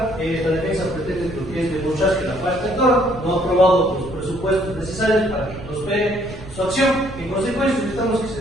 La defensa pretende lo que es demostrar que la parte actora no ha aprobado los presupuestos necesarios para que prospere su acción. En consecuencia, solicitamos que se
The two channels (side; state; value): right; noise; rumble, 14 dB below the sound